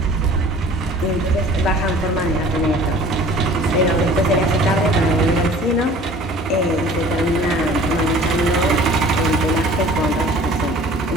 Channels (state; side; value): normal; both; correlation 0.47